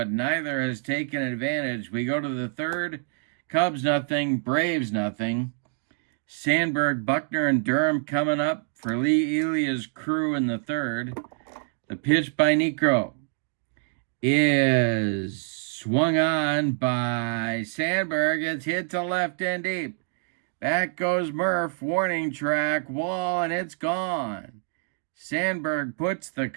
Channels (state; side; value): silent; left; digital silence